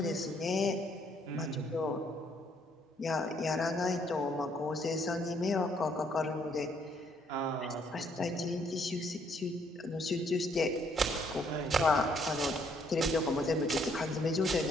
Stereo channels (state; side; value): normal; both; correlation 0.68